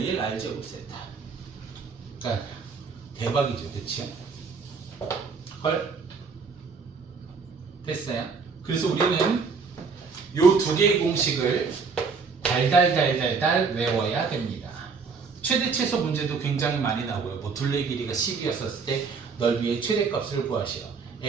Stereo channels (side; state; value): left; quieter; 5.1 dB